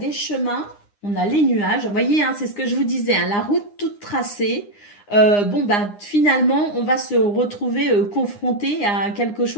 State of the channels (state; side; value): late; right; 9.8 ms